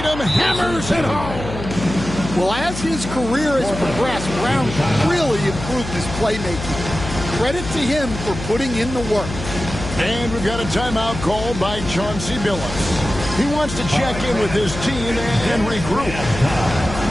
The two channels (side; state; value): left; noise; hum, 9 dB below the sound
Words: hammers it home. Well, as his career has progressed, Brown really improved his playmaking. Credit to him for putting in the work. And we've got a timeout called by Chauncey Billups. He wants to check in with his team and regroup.